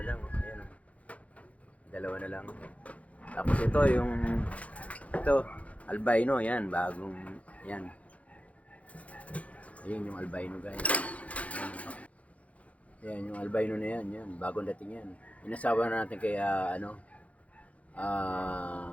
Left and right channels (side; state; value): right; late; 0.066 ms